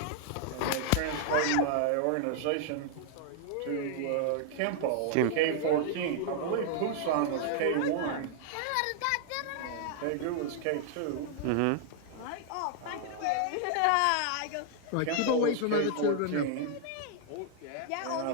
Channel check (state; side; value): different; both; correlation -0.01